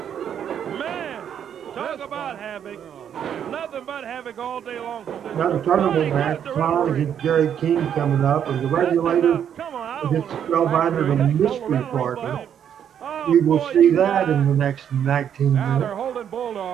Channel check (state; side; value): quieter; left; 8.9 dB